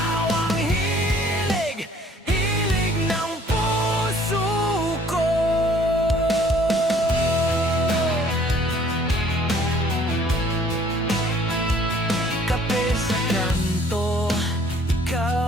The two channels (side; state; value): both; normal; correlation 0.57